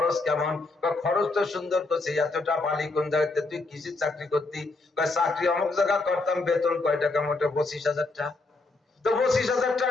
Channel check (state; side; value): quieter; right; 3.4 dB